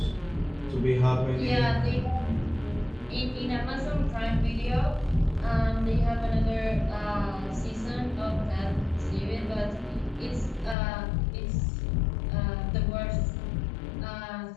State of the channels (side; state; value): right; drops out; at 10.8 s